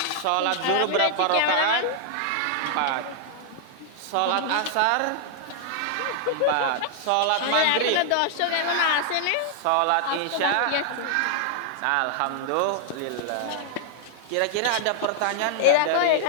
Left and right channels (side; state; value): both; different; correlation 0.00